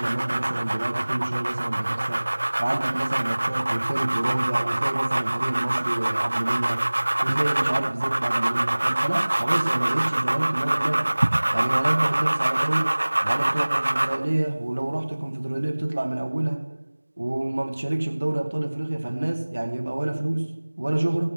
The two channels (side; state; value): both; inverted; correlation -1.00